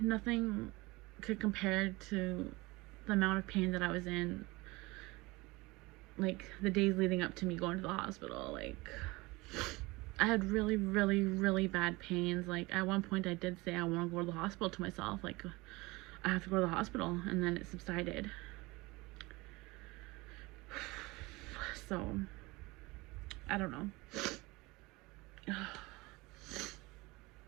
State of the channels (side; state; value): left; quieter; 22.7 dB